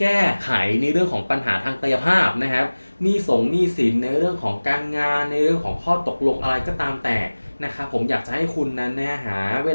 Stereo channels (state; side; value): inverted; both; correlation -1.00